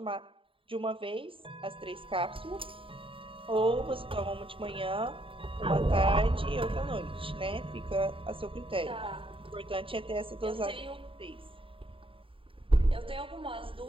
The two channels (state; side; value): late; left; 0.26 ms